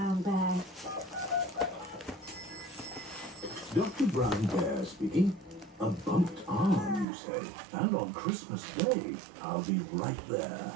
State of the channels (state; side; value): drops out; left; at 7.1 s